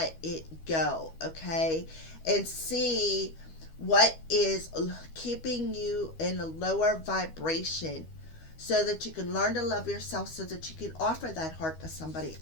it go, okay? And see what is keeping you in a lower vibration, so that you can learn to love yourself, so that you can offer that heart to somebody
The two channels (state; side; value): late; right; 12 ms